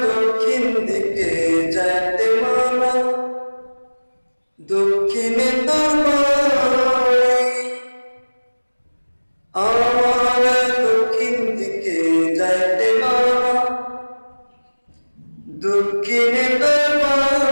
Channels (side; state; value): both; inverted; correlation -1.00